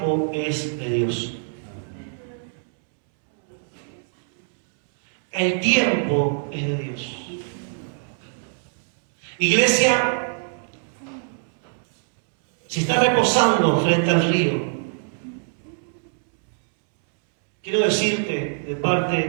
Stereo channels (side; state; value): left; silent; 63 dB below the other